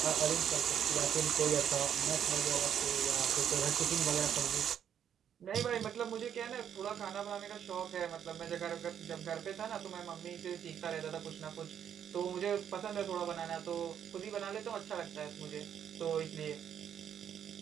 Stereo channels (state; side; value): quieter; left; 8.9 dB